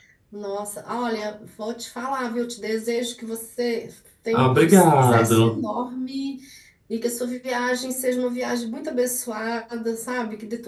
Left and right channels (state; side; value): identical; both; correlation 1.00